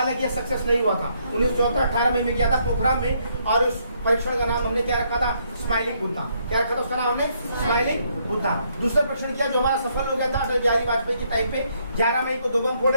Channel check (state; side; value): inverted; both; correlation -0.72